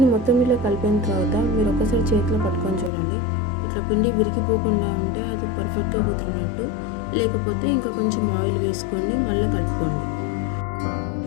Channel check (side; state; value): right; drops out; at 2.9 s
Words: మొత్తం ఇలా కలిపిన తర్వాత మీరు ఒకసారి చేతిలో పట్టుకొని చూడండి. ఇట్లా పిండి విరిగిపోకుండా ఉంటే అది పర్ఫెక్ట్గా కుదిరినట్టు. లేకపోతే ఇంకా కొంచెం ఆయిల్ వేసుకొని మళ్ళీ కలుపుకోండి.